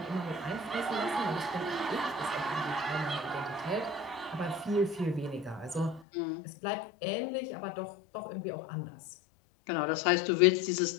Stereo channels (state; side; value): drops out; right; at 6.1 s